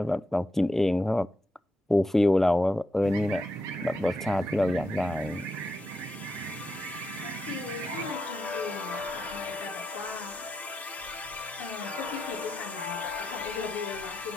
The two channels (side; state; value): both; normal; correlation 0.85